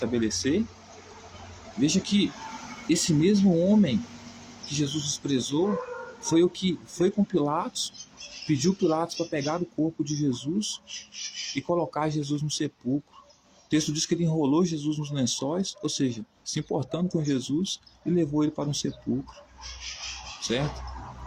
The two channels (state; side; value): identical; both; correlation 1.00